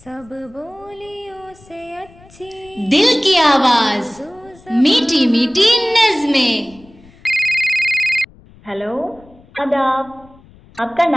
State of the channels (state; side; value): noise; left; rumble, 26 dB below the sound